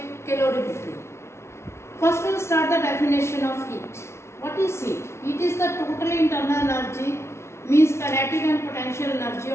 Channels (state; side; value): late; right; 0.13 ms